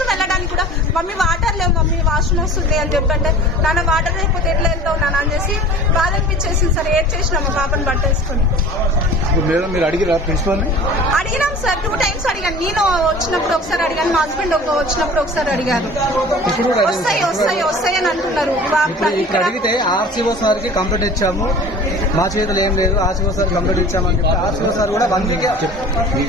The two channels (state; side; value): normal; both; correlation 0.41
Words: వెళ్ళడానికి కూడా మమ్మీ వాటర్ లేవు, మమ్మీ వాష్రూమ్ వస్తుంది అని చెప్పంటే, నాన్న వాటర్ లేకపోతే ఎట్లా వెళ్తావు నాన్న అని చేసి బాధ అనిపించేసింది సార్. ఏడ్ చేసినా మా పాపని బట్టేసుకొని. అడిగినాం సార్, 2 times అడిగాను. నేను వచ్చినప్పుడు ఒకసారి అడిగాను, మా హస్బెండ్ వచ్చినప్పుడు ఒకసారి అడిగారు. వస్తాయి అని అంటున్నారు. ఇక్కడ అడిగితే ఆర్సీఓ సార్ కి కంప్లైంట్ ఇచ్చాము, మా చేతులు ఏం లేదు, ఆర్సీఓ సార్ కంప్లైంట్ ఇచ్చామని చెప్పి ఆర్సీఓ సార్ కూడా 1 week